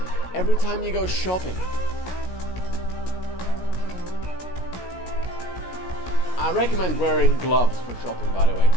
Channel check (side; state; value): right; late; 16 ms